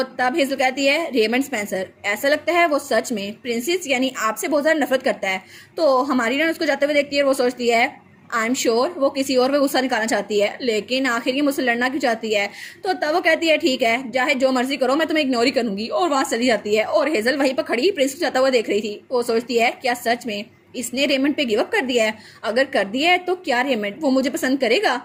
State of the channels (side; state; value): both; identical; correlation 1.00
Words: तब हेजल कहती है रेमंड स्पेंसर ऐसा लगता है वो सच में प्रिंसेस यानी आपसे बहुत ज़्यादा नफरत करता है। तो हमारी हीरोइन उसको जाते हुए देखती है। वो सोचती है आई एम श्योर वो किसी और पे गुस्सा निकालना चाहती है, लेकिन आखिर ये मुझसे लड़ना क्यों चाहती है? तो तब वो कहती है ठीक है चाहे जो मर्जी करो मैं तुम्हें इग्नोर ही करूंगी, और वहां चली जाती है। और हेजल वहीं पर खड़ी प्रिंस को जाता हुआ देख रही थी। वो सोचती है क्या सच में इसने रेमंड पे गिव अप कर दिया है? अगर कर दिया है तो क्या रेमंड वो मुझे पसंद करेगा?